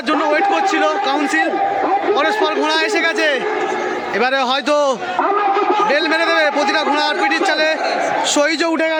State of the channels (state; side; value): identical; both; correlation 1.00